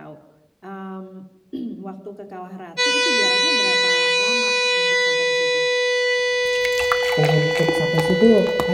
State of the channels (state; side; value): identical; both; correlation 1.00